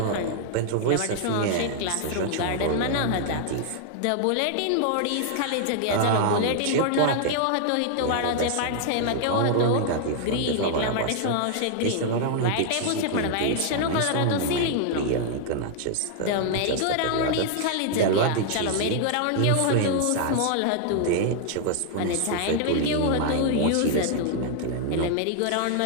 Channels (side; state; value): both; different; correlation 0.00